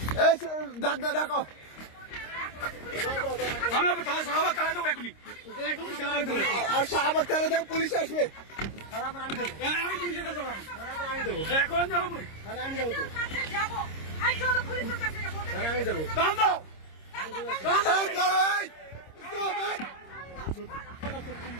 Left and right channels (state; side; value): late; right; 26 ms